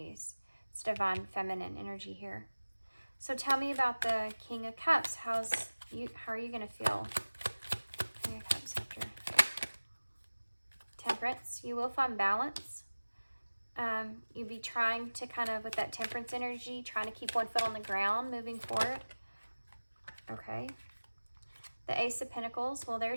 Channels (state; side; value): inverted; both; correlation -1.00